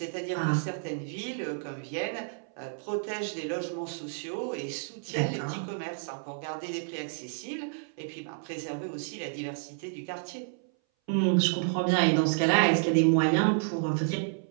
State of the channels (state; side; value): silent; left; 58 dB below the other